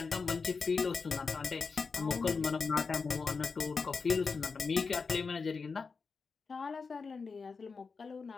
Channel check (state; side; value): quieter; right; 4.8 dB